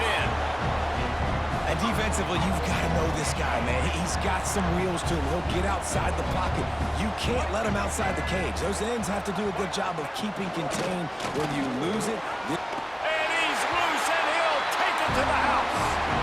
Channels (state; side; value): identical; both; correlation 1.00